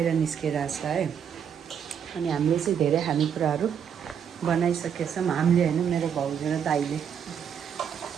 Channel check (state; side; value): quieter; left; 8.0 dB